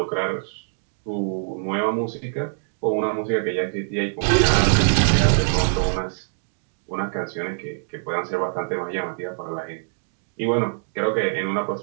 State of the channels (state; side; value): silent; left; digital silence